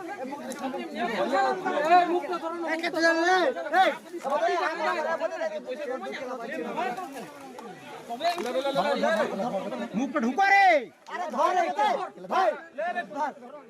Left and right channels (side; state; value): both; identical; correlation 1.00